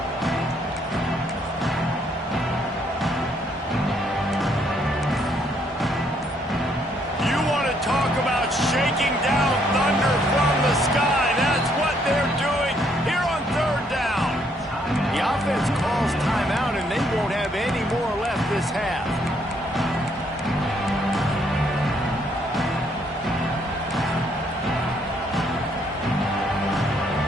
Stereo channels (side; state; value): both; normal; correlation 0.70